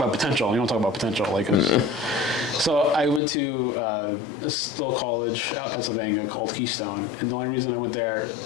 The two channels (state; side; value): drops out; right; at 3.2 s